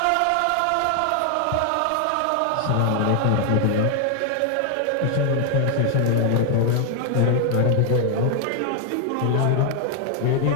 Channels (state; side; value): different; both; correlation 0.00